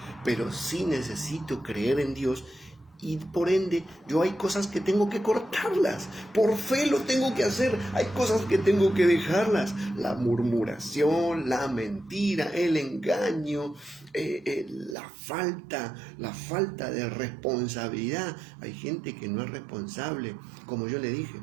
pero sí necesito creer en Dios. Y por ende, yo hay cosas que tengo que cortarlas. Por fe lo tengo que hacer. Hay cosas que tengo que dejarlas. La murmuración, la mentira, el engaño, la falta de responsabilidad. Hay gente que no es responsable, como yo le dije.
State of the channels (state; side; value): drops out; left; at 15.0 s